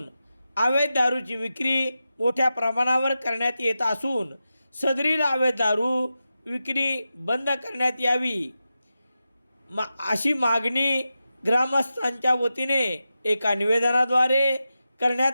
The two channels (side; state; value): both; inverted; correlation -0.91